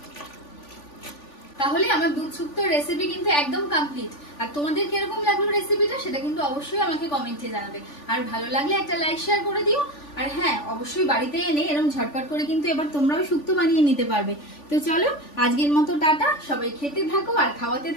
তাহলে আমার দুধ শুক্তোর রেসিপি কিন্তু একদম কমপ্লিট। আর তোমাদের কিরকম লাগলো রেসিপিটা সেটা কিন্তু অবশ্যই আমাকে কমেন্টে জানাবে। আর ভালো লাগলে একটা লাইক শেয়ার করে দিও। আর হ্যাঁ, অবশ্যই বাড়িতে এনে এরকম ঝটপট করে কিন্তু এবার তোমরাও শুক্তো বানিয়ে নিতে পারবে। তো চলো আজকের মতো টাটা। সবাই খেতে থাকো আর খাওয়াতে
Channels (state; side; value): late; right; 3.5 ms